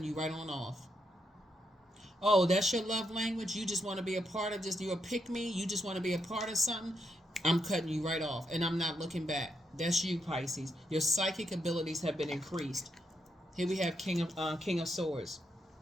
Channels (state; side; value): normal; both; correlation 0.80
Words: you right on off. Oh, that's your love language? You just want to be a part of just, you're a pick me? You just want to be a part of something? I'm cutting you right off, and I'm not looking back. That's you, Pisces. Your psychic abilities have been increased. Here we have King of Swords.